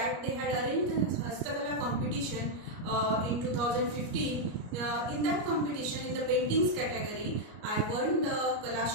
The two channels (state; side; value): late; left; 33 ms